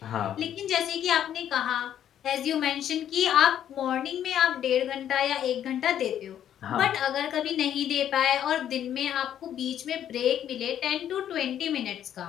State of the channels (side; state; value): right; quieter; 10.3 dB